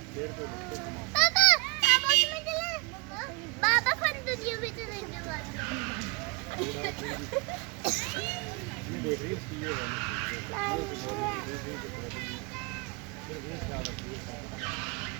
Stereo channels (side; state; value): left; quieter; 30.7 dB